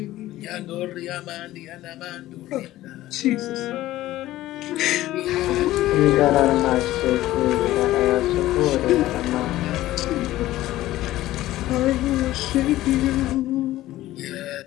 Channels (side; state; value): right; quieter; 15.5 dB